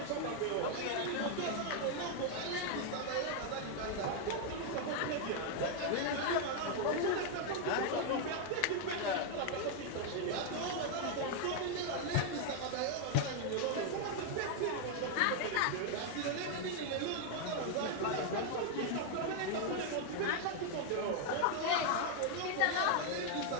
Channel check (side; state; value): both; different; correlation 0.00